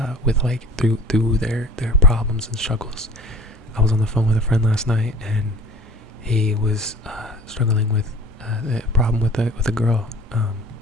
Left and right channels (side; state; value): both; normal; correlation 0.45